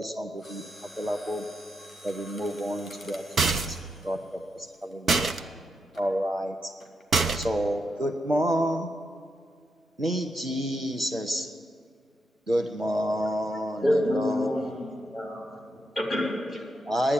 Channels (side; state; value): both; normal; correlation 0.83